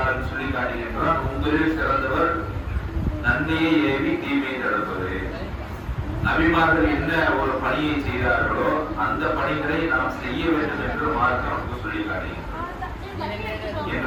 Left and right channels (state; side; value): identical; both; correlation 1.00